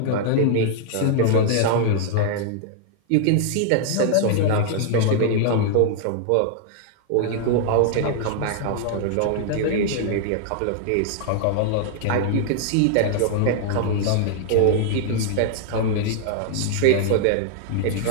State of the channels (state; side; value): different; both; correlation -0.01